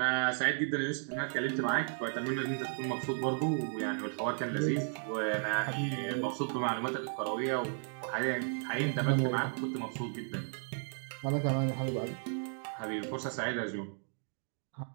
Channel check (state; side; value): silent; left; 55 dB below the other